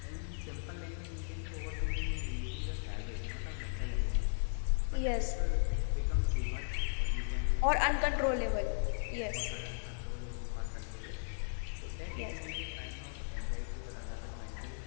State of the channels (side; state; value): right; silent; digital silence